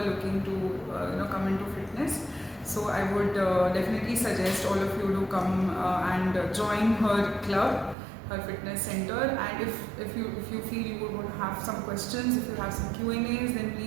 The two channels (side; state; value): left; drops out; at 8.0 s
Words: looking to come into fitness. So I would definitely suggest all of you to come and join her club, her fitness center. And if you feel you would want to have some questions, if you have some Q&As, then